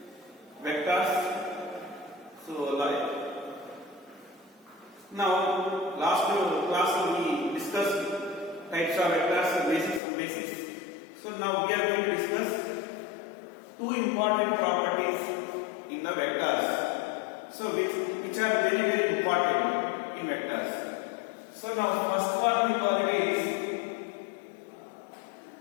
vectors. So like now last class we discussed types of vectors, basics and basics. So now we are going to discuss two important properties in the vectors. So which are very important in vectors. So now first one we call it is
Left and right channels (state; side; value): drops out; right; at 10.0 s